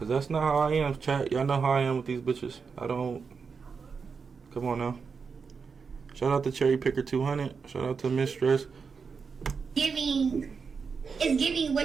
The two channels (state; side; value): quieter; left; 5.5 dB